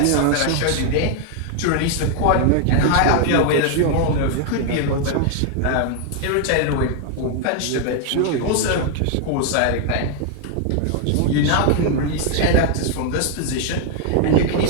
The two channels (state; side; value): different; both; correlation 0.00